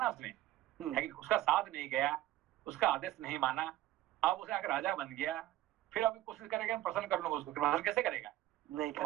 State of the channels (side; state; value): left; quieter; 15.0 dB